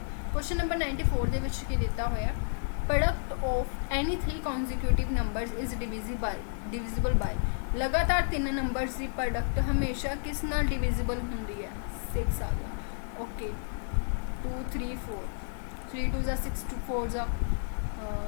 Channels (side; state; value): right; silent; digital silence